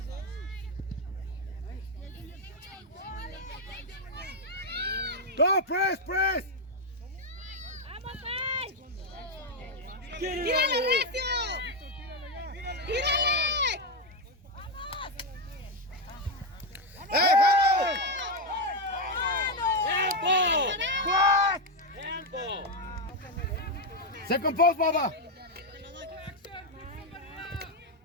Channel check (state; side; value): normal; both; correlation 0.05